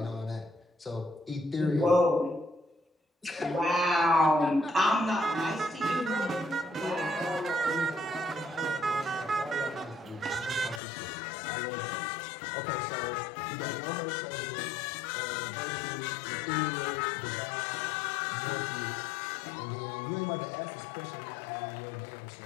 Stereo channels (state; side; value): drops out; right; at 10.8 s